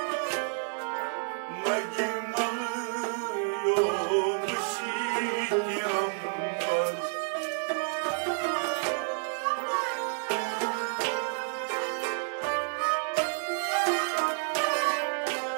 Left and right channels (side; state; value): left; silent; 58 dB below the other